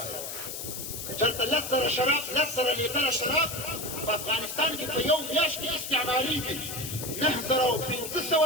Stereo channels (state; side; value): noise; left; hiss, 7 dB below the sound